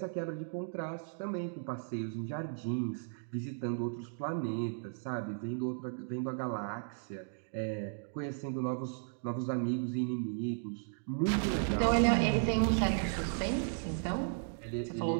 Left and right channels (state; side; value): silent; left; digital silence